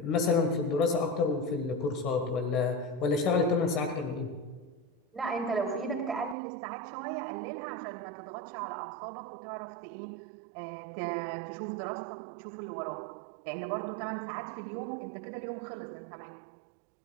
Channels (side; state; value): left; drops out; at 6.4 s